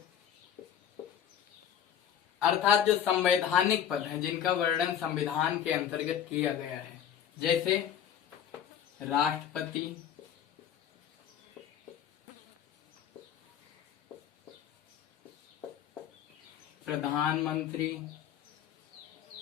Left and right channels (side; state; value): right; quieter; 9.4 dB